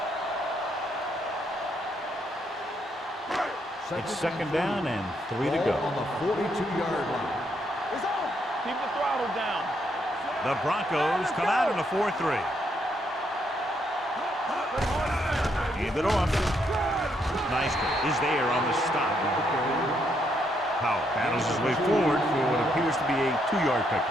It's second down and 3 to go. Ball on the 42-yard line. It's on. Keep the throttle down. The Broncos come out in a 4-3. Hand it off. Neisner is there on the stop. Powell battles his way forward for what appears to be a 2-yard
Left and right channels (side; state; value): both; normal; correlation 0.75